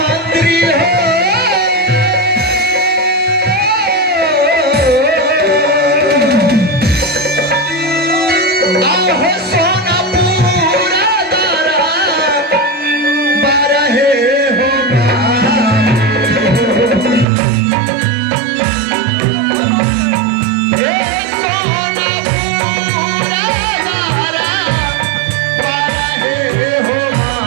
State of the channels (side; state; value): left; drops out; at 17.2 s